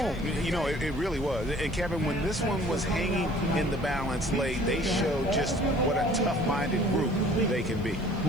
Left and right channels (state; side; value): noise; right; hiss, 28 dB below the sound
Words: You know, it really was. And Kevin, when this one was hanging in the balance late, they showed just what a tough-minded group they can be.